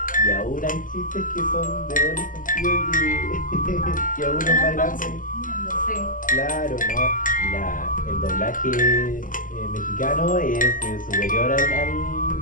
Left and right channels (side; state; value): right; late; 0.38 ms